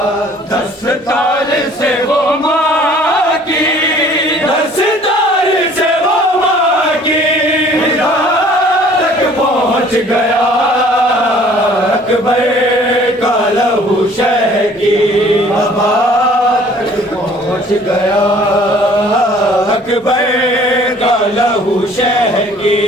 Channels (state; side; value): normal; both; correlation 0.54